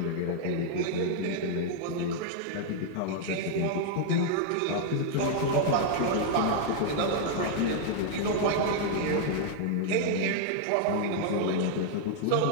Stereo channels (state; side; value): different; both; correlation -0.01